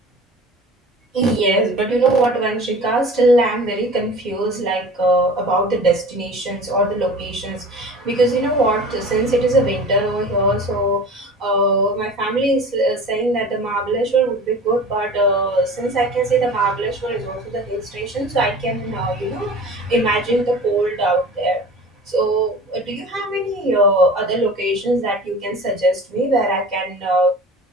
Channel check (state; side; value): normal; both; correlation 0.39